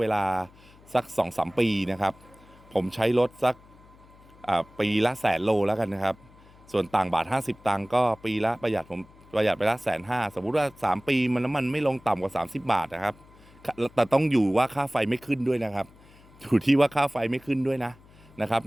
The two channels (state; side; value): noise; left; hum, 25 dB below the sound